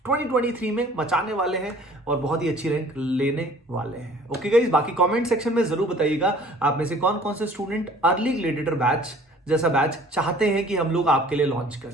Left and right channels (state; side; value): normal; both; correlation 0.51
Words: 2023 में मचाने वाले हैं और बहुत ही अच्छी रैंक लेने वाले हैं। ओके गाइस, बाकी कमेंट सेक्शन में जरूर बताइएगा आप में से कौन कौन से स्टूडेंट अर्ली ग्रेडिएटर बैच जैसा बैच चाहते हैं कि हम लोग आपके लिए लॉन्च